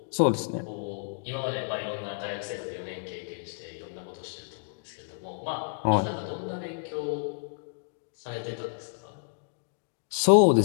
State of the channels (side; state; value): right; silent; digital silence